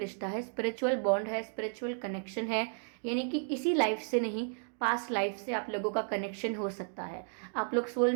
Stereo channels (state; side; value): silent; left; 56 dB below the other